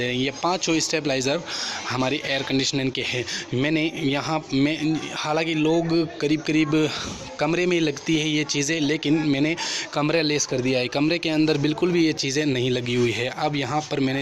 रहे हैं। ये 5 स्टेबलाइज़र हमारी एयर कंडीशनिंग के हैं। मैंने यहाँ में हालांकि लोग करीब कमरे में लगती है ये चीज़ें, लेकिन मैंने कमरे लेस कर दिया है, कमरे के अंदर बिल्कुल भी ये चीज़ें नहीं लगी हुई है। अब यहाँ पर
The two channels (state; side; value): identical; both; correlation 1.00